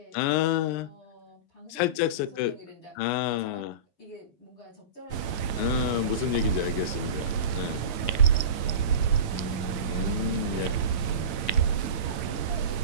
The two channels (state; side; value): late; right; 8.9 ms